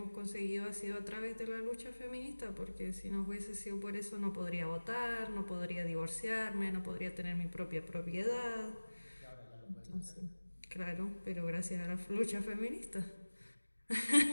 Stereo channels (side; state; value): both; inverted; correlation -1.00